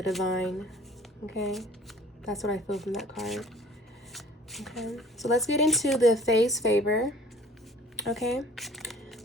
divine. Okay? That's what I feel from that card. Okay. So let's get into the phase favor. Okay?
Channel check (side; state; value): both; normal; correlation 0.51